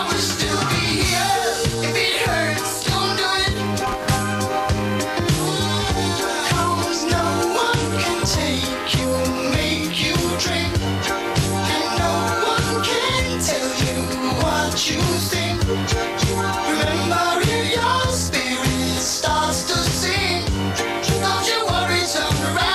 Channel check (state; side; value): identical; both; correlation 1.00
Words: will still be here. If it hurts, don't do it. 'Cause no one can take you, make you drink. And no one can tell you what you think. Remember, if your spirit starts to sing, don't you worry, turn